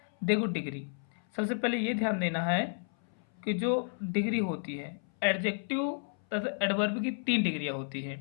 देखो, डिग्री सबसे पहले ये ध्यान देना है कि जो डिग्री होती है एडजेक्टिव तथा एडवर्ब की 3 डिग्रियाँ होती हैं।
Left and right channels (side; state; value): right; silent; 56 dB below the other